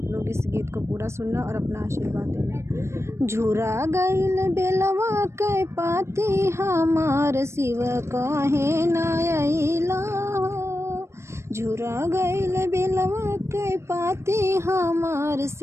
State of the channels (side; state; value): left; late; 0.13 ms